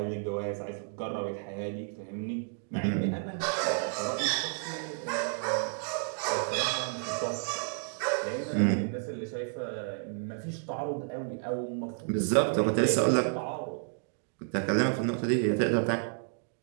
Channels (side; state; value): left; silent; 57 dB below the other